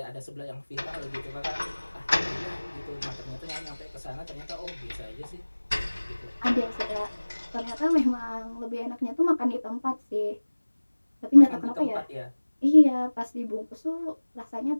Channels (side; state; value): both; inverted; correlation -1.00